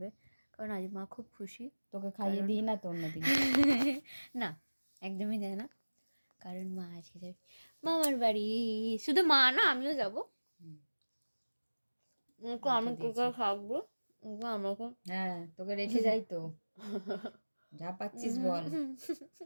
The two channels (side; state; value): both; inverted; correlation -1.00